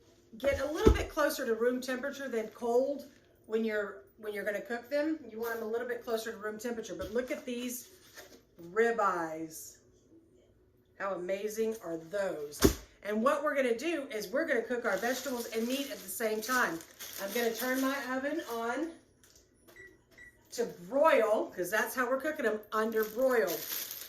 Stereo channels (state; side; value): identical; both; correlation 1.00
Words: get a little bit closer to room temperature than cold when you're going to cook them. You want them a little bit closer to room temperature. But look at these ribeyes. How amazing are those? And what we're going to do is we're going to cook our vegetables and meat at the same time. I'm going to turn my oven on to broil, because that's how we're cooking them, under broiled.